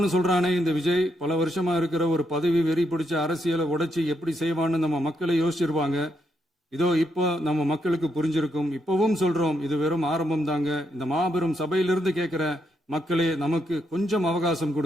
சொல்றானே இந்த விஜய், பல வருஷமா இருக்கிற ஒரு பதவி வெறி பிடிச்ச அரசியலை உடைச்சி எப்படி செய்வான்னு நம்ம மக்களை யோசிச்சிருவாங்க. இதோ இப்போ நம்ம மக்களுக்கு புரிஞ்சிருக்கும். இப்பவும் சொல்றோம், இது வெறும் ஆரம்பம் தாங்க. இந்த மாபெரும் சபையிலிருந்து கேட்கிற மக்களே, நமக்கு கொஞ்சம் அவகாசம்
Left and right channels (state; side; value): normal; both; correlation 0.79